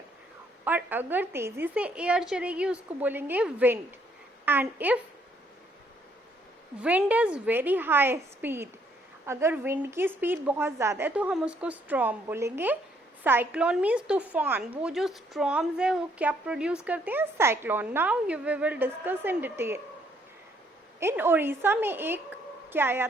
और अगर तेजी से एयर चलेगी उसको बोलेंगे wind. And if wind is very high speed, अगर विंड की स्पीड बहुत ज़्यादा है तो हम उसको स्टॉर्म बोलेंगे. साइक्लोन मीन्स तूफान. वो जो स्टॉर्म्स है वो क्या प्रोड्यूस करते हैं? Cyclone. Now you we will discuss in detail. In Orissa में एक क्या आया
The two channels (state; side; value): normal; both; correlation 0.68